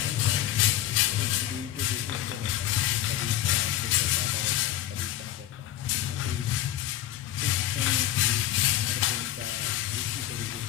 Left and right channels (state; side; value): quieter; right; 12.9 dB